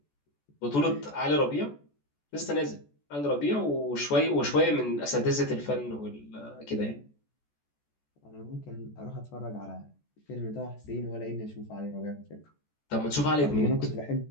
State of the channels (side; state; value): right; late; 14 ms